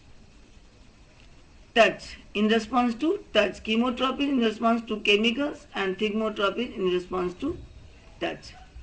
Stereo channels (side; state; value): both; identical; correlation 1.00